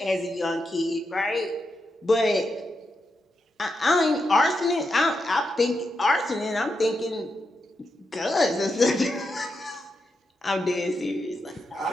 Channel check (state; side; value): normal; both; correlation 0.85